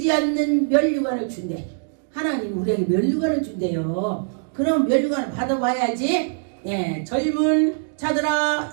않는 면류관을 준대. 하나님 우리에게 면류관을 준대요. 그럼 면류관을 받아봐야지. 예, 젊은 자들아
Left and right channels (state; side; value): silent; left; digital silence